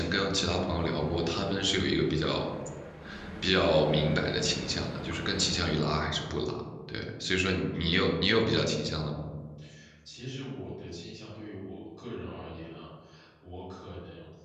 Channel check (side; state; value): both; identical; correlation 1.00